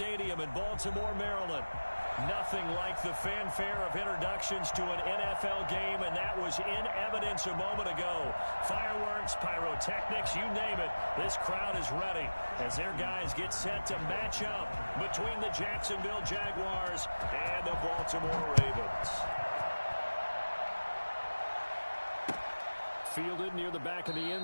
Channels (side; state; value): both; inverted; correlation -1.00